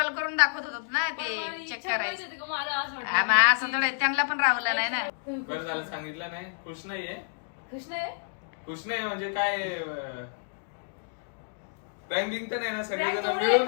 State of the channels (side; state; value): right; silent; digital silence